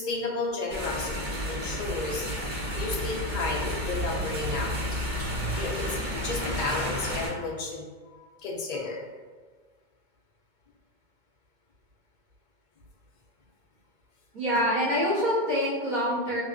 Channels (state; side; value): late; left; 2.2 ms